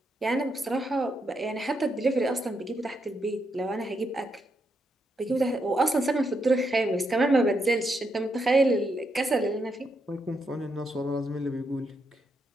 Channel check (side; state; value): both; normal; correlation 0.81